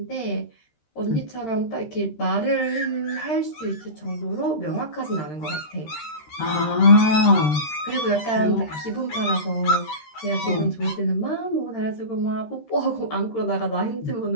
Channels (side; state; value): right; late; 13 ms